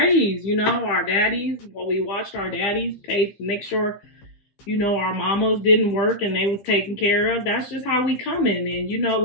you know, our daddies. Well, we watched our daddies pay, make sure, you know, our mamas didn't work and they was taken care of. That's just how we come in. And, you know,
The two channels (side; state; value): right; late; 15 ms